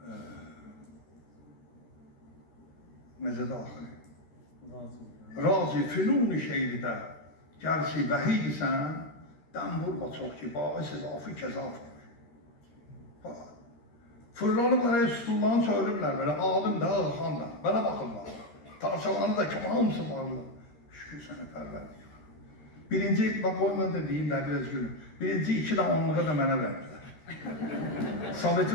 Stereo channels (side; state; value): right; late; 13 ms